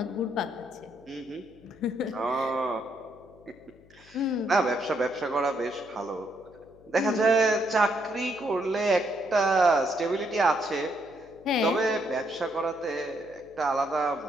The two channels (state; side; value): noise; left; hum, 26 dB below the sound